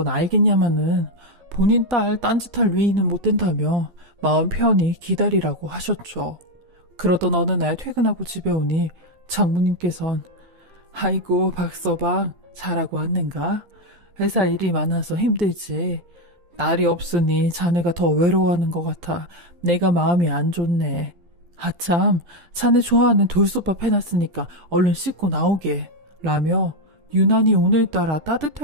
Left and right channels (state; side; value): late; left; 12 ms